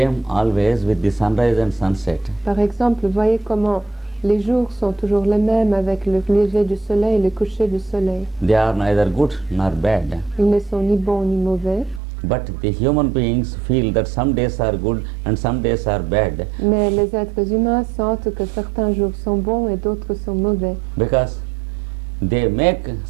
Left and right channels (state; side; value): drops out; left; at 12.0 s